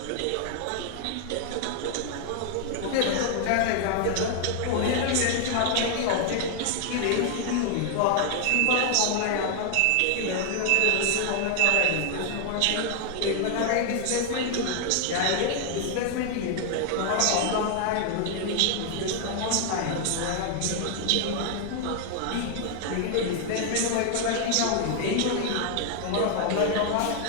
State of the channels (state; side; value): different; both; correlation 0.00